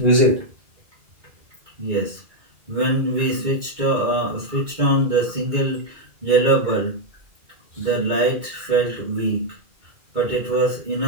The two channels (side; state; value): left; late; 2.2 ms